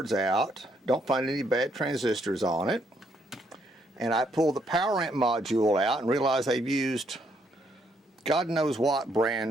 out, don't find any bad transistors on it, and I pull the power amp module out and realize they've used God knows what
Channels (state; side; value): normal; both; correlation 0.72